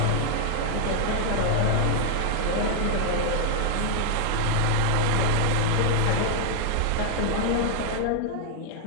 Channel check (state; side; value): different; both; correlation 0.00